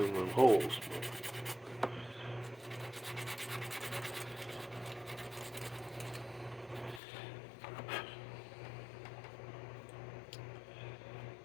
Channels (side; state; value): right; drops out; at 7.0 s